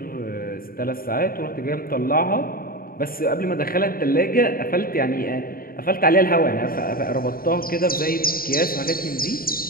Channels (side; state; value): right; late; 0.42 ms